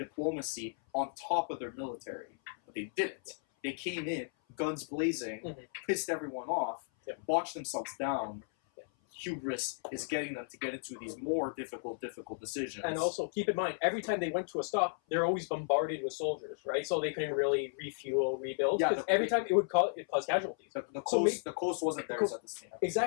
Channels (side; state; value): right; silent; 55 dB below the other